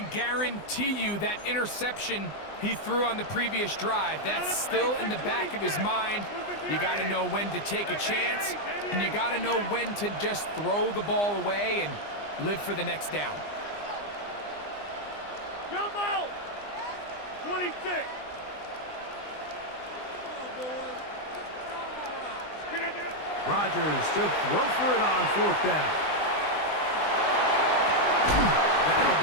guarantee you that interception he threw on the previous drive, that's still in the back of his mind. You got to know when to take a chance, and you got to know when to just throw the ball away and live for the next down. Jump out! 26. Rodgers to throw for it on fourth down. That'll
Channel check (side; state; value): right; late; 20 ms